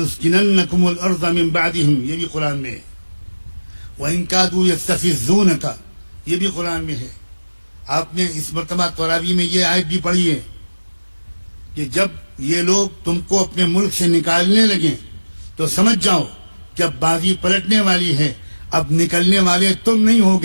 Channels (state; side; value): inverted; both; correlation -1.00